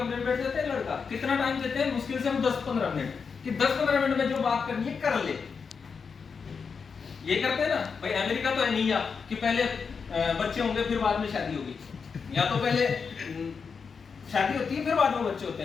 में बैठ जाता है लड़का। कितना टाइम देते हैं? मुश्किल से हम 10-15 मिनट, कि 10-15 मिनट में जो बात करनी है कर ले। ये करते हैं ना भाई। अमेरिका तो है नहीं या कि पहले बच्चे होंगे फिर बाद में शादी होगी, या तो पहले शादी होती है फिर बाद में बच्चे होते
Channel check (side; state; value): right; quieter; 5.6 dB